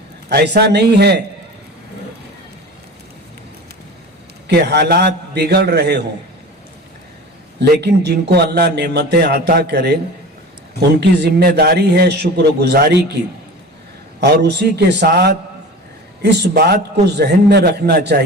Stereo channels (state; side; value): normal; both; correlation 0.36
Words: ایسا نہیں ہے کہ حالات بگڑ رہے ہوں، لیکن جن کو اللہ نعمتیں عطا کرے ان کی ذمہ داری ہے شکر گزاری کی، اور اسی کے ساتھ اس بات کو ذہن میں رکھنا